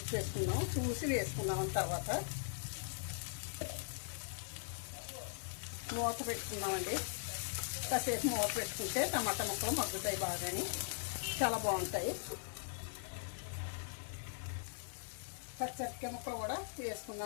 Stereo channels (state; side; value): silent; right; digital silence